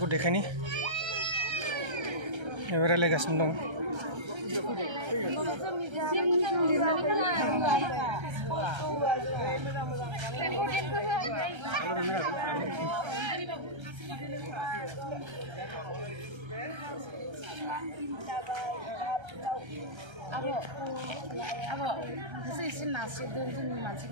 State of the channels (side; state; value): left; late; 1.3 ms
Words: देखायनि रायलायगासिनो दं